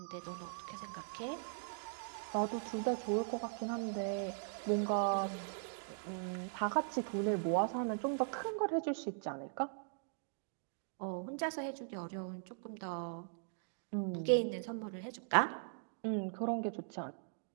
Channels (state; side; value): silent; left; digital silence